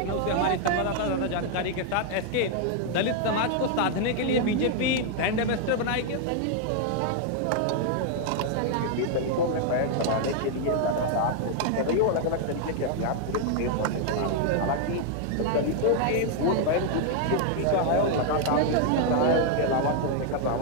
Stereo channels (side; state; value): both; different; correlation 0.00